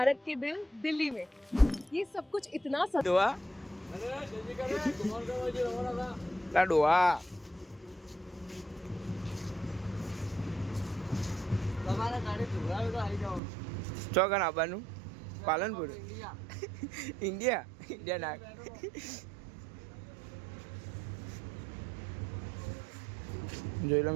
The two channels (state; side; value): drops out; left; at 13.4 s